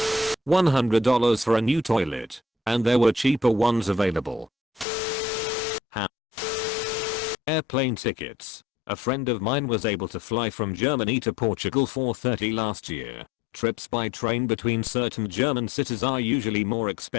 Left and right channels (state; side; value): drops out; right; at 4.9 s